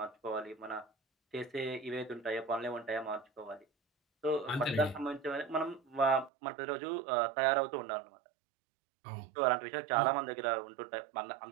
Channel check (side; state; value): left; drops out; at 6.3 s